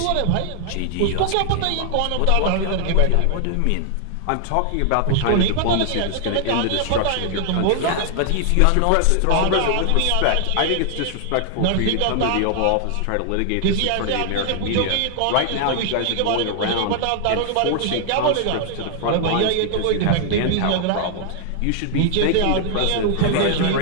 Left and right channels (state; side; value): different; both; correlation 0.00